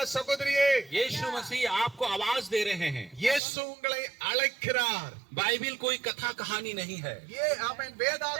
சகோதரியே, यीशु मसीह आपको आवाज दे रहे हैं। இயேசு உங்களை அழைக்கிறார். बाइबल कोई कथा कहानी नहीं है। அவன்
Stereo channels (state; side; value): drops out; left; at 3.4 s